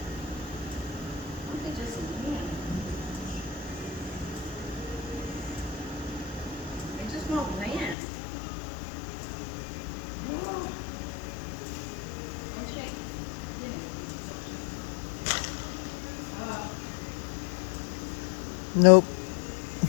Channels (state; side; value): drops out; right; at 8.0 s